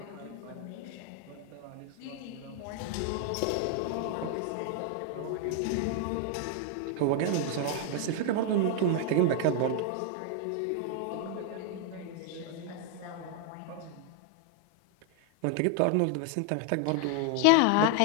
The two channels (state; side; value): different; both; correlation 0.00